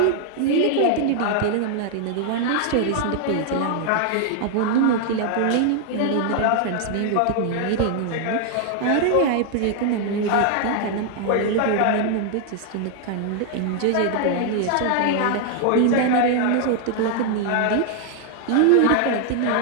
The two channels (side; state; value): both; different; correlation 0.00